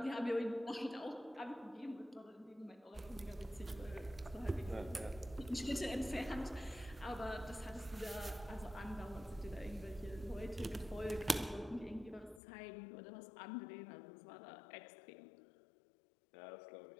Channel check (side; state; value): right; drops out; at 12.4 s